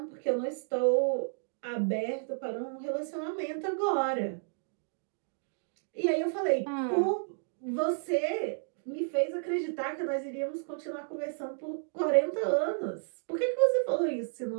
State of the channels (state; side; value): silent; left; digital silence